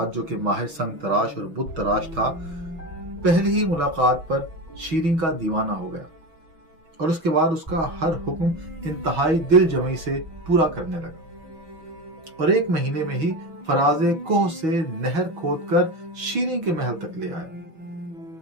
जो कि माहिर संग तराश और बुत तराश था, पहली ही मुलाकात पर शीरीं का दीवाना हो गया और उसके बाद उसका हर हुक्म इंतहाई दिल जमी से पूरा करने लगा। और एक महीने में ही फराजे कोह से नहर खोदकर शीरीं के महल तक ले आया।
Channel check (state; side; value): late; left; 6.3 ms